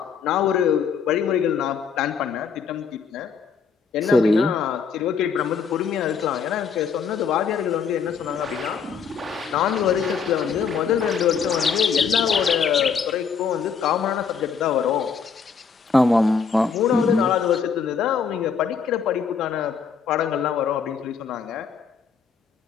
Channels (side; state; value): right; quieter; 6.2 dB